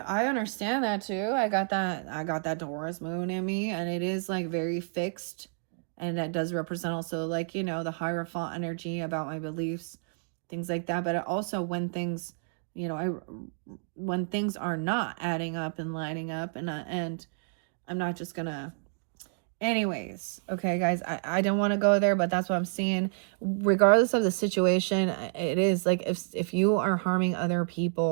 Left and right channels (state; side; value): silent; left; digital silence